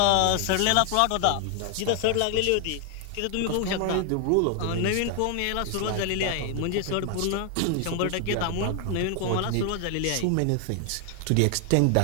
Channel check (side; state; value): both; different; correlation 0.00